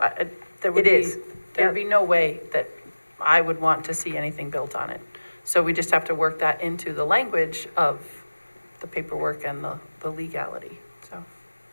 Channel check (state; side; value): inverted; both; correlation -1.00